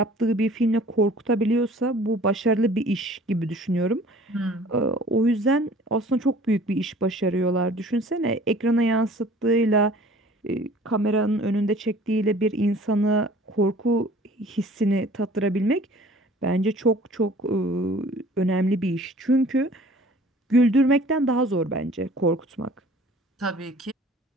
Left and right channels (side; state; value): both; normal; correlation 0.49